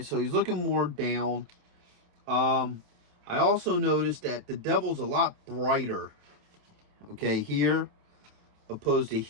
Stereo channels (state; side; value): late; left; 27 ms